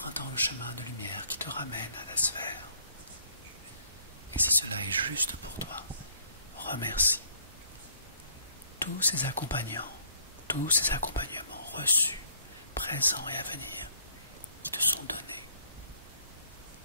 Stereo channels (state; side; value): inverted; both; correlation -0.62